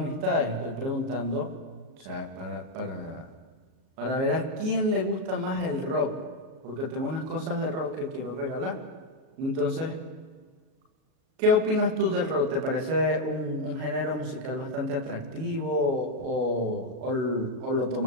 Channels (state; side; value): late; left; 37 ms